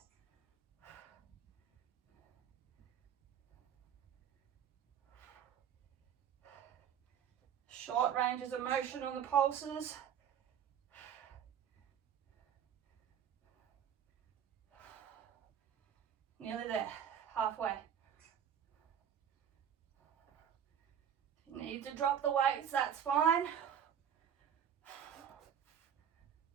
Short ranges of motion on the pulses. Nearly there, halfway. If you need to drop the weights, that's fine.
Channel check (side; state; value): left; quieter; 8.7 dB